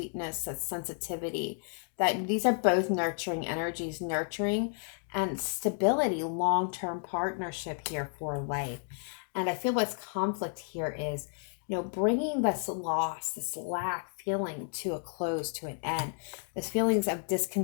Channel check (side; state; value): right; silent; 55 dB below the other